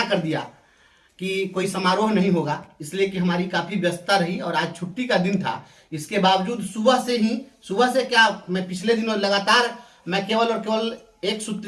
कर दिया कि कोई समारोह नहीं होगा, इसलिए कि हमारी काफी व्यस्तता रही और आज छुट्टी का दिन था। इसके बावजूद सुबह से क्या, मैं पिछले दिनों लगातार मैं केवल और केवल एक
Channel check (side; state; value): both; identical; correlation 1.00